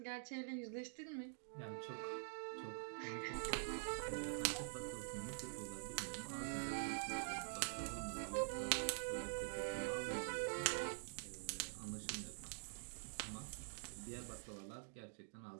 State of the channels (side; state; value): left; silent; digital silence